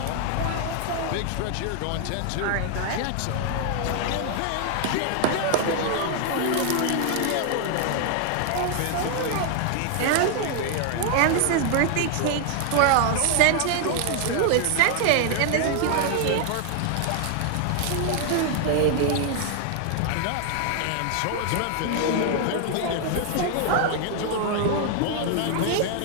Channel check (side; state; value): both; different; correlation 0.00